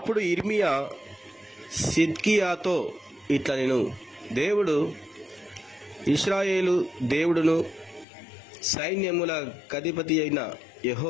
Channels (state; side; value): drops out; right; at 8.1 s